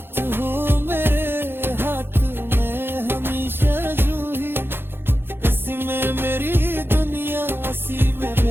हो मेरे हाथ में हमेशा जूही, इसी में मेरी दुनिया इसी में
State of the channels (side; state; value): left; late; 0.10 ms